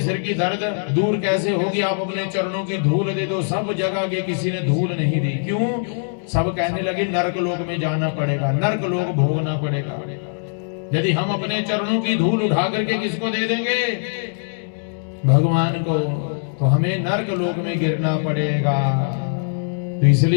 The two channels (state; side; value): silent; right; digital silence